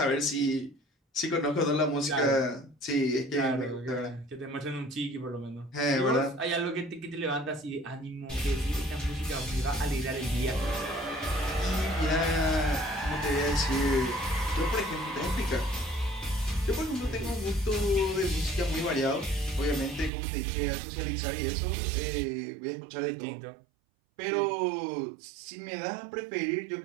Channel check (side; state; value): left; drops out; at 20.1 s